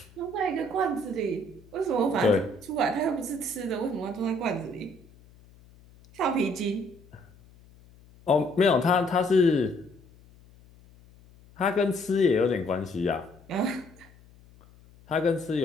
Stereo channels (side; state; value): left; noise; hum, 25 dB below the sound